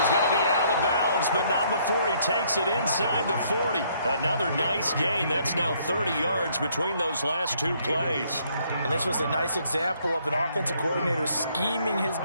going to be out of bounds, but not before he takes it inside the 40. Another nice gain. That's now 30 yards between those last 2 plays. And this was a nice example of an offensive coordinator scheming his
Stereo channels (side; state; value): both; inverted; correlation -0.67